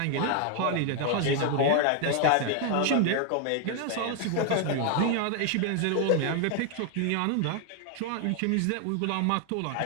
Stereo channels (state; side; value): different; both; correlation 0.00